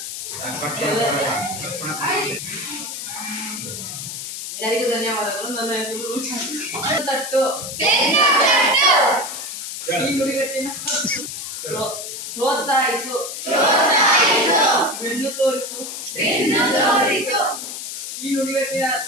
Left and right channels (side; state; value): left; noise; hiss, 7 dB below the sound